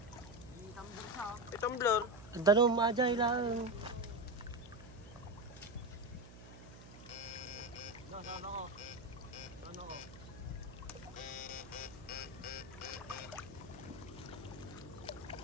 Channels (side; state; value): right; noise; hum, 17 dB below the sound